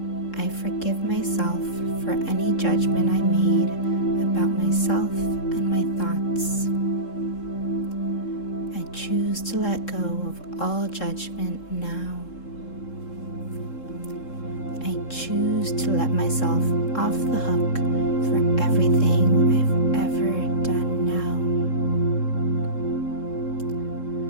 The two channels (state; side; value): late; right; 3.7 ms